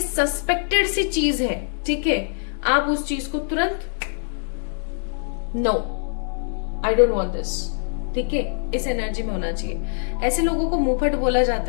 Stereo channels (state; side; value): silent; right; digital silence